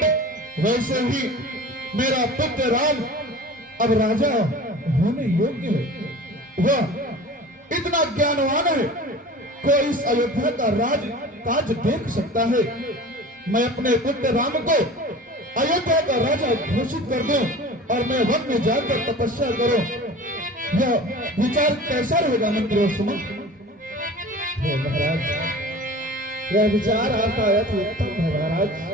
वैसे ही मेरा पुत्र राम अब राजा होने योग्य है। वह इतना ज्ञानवान है, कोई इस अयोध्या का राज काज देख सकता है। मैं अपने पुत्र राम को अयोध्या का राजा घोषित कर दूं और मैं वन में जाकर तपस्या करूं। यह विचार कैसा रहेगा मंत्री सुमन? महाराज, यह विचार आपका अति उत्तम है महाराज,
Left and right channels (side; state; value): both; normal; correlation 0.39